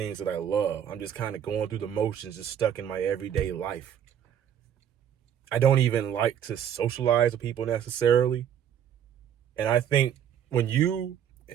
that I love. I'm just kind of going through the motions, just stuck in my everyday life. I don't even like to socialize with people necessarily. And I think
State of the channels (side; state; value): left; quieter; 9.4 dB